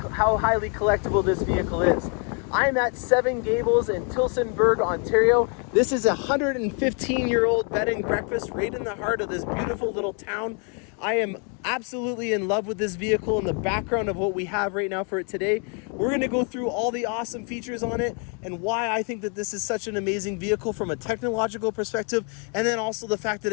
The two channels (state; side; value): quieter; right; 39.1 dB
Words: highly collectible this vehicle is. I'm at Seven Gables in Tillsonburg, Ontario. This is a 115-year-old bed and breakfast right in the heart of this beautiful little town. I am absolutely in love with this vehicle and the background of what we have right now for it today. We're going to go through all the awesome features on it and why I think that this is such an amazing vehicle from a technological perspective, and then also the fact that